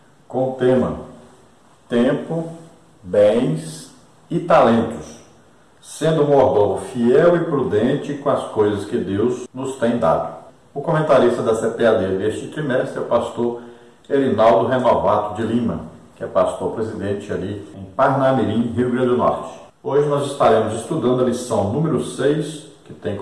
com o tema Tempo, Bens e Talentos, sendo um mordomo fiel e prudente com as coisas que Deus nos tem dado. O comentarista da CPAD deste trimestre é o pastor Erinaldo Renovato de Lima, que é pastor presidente ali em Parnamirim, Rio Grande do Norte. Hoje nós estaremos estudando a lição número 6, que tem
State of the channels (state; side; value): identical; both; correlation 1.00